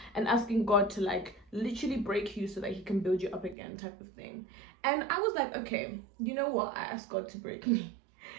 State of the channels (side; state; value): left; drops out; at 3.6 s